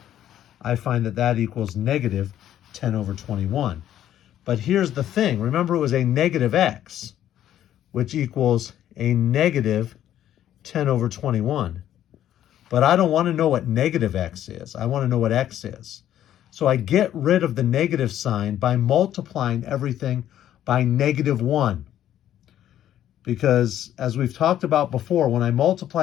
I find that that equals negative 10 over 21. But here's the thing. Remember, it was a negative x, which equals a negative 10 over 21. But I don't want to know what negative x is. I want to know what x is. So I get rid of the negative sign by multiplying everything by negative 1. Because as we've talked about before, when I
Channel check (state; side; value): quieter; right; 11.5 dB